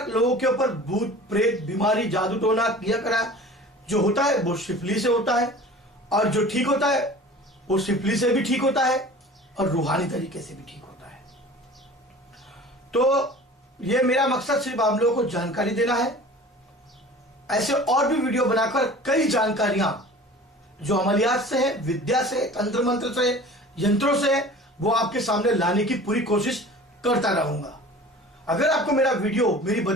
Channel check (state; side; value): normal; both; correlation 0.42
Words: लोगों के ऊपर भूत प्रेत, बीमारी, जादू टोना किया करा जो होता है वो शिफली से होता है और जो ठीक होता है वो शिफली से भी ठीक होता है और रूहानी तरीके से भी ठीक होता है। तो ये मेरा मकसद सिर्फ आप लोगों को जानकारी देना है। ऐसे और भी वीडियो बनाकर कई जानकारियां जो अमलियात से है, विद्या से, तंत्र मंत्र से, यंत्रों से, वो आपके सामने लाने की पूरी कोशिश करता रहूंगा। अगर आपको मेरा वीडियो, मेरी